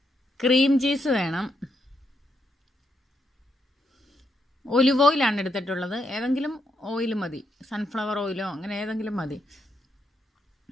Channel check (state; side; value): normal; both; correlation 0.79